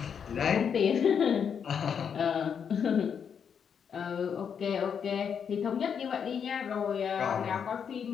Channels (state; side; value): quieter; right; 7.3 dB